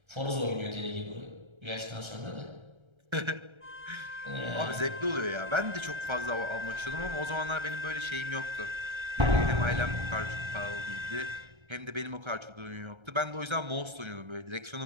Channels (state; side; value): late; left; 1.3 ms